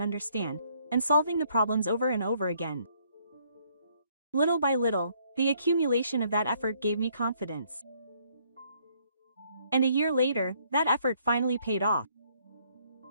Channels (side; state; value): both; inverted; correlation -0.67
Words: understand, and solving the problems over and over again. Little by little, the accumulation of that effort gave me confidence. And a year later, that effort finally paid off.